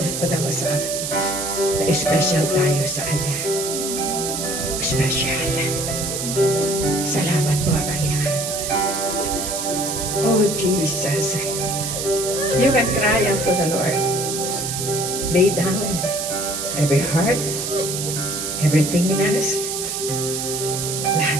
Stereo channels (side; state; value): right; noise; hiss, 3 dB below the sound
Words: ipadama sa akin. Na special tayo sa Kanya. Special. Salamat po, Panginoon. Oh, Jesus. You can cry unto the Lord. Lay down every heart, everything in us.